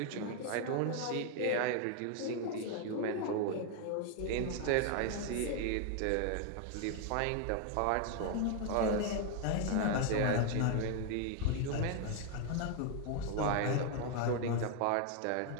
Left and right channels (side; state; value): both; different; correlation 0.00